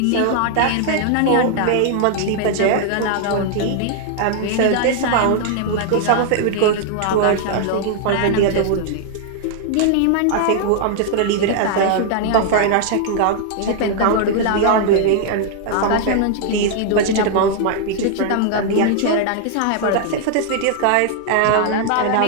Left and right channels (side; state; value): both; different; correlation 0.00